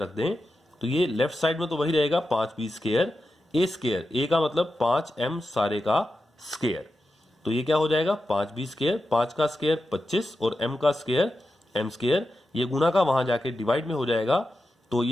रख दें, तो ये लेफ्ट साइड में तो वही रहेगा 5b square a square, a का मतलब 5m सारे का स्क्वायर। तो ये क्या हो जाएगा, 5b स्क्वायर, 5 का स्क्वायर 25 और m का स्क्वायर m स्क्वायर, ये गुना का वहां जाके डिवाइड में हो जाएगा, तो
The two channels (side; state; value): both; normal; correlation 0.90